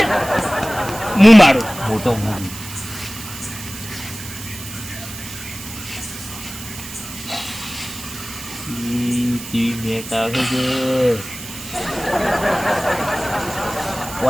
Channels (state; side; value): noise; right; hiss, 12 dB below the sound